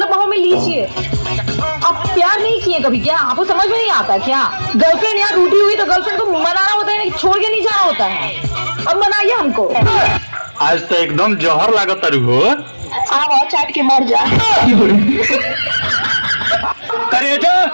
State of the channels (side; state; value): both; inverted; correlation -1.00